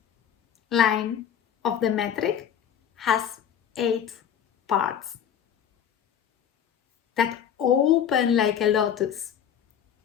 line of the metric has 8 parts that open like a lotus,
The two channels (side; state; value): right; quieter; 8.9 dB